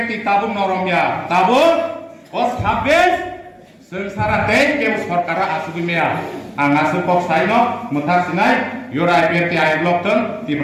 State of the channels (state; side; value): identical; both; correlation 1.00